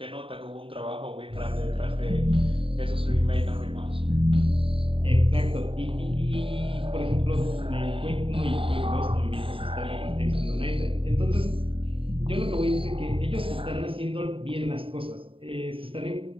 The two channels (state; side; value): late; left; 0.26 ms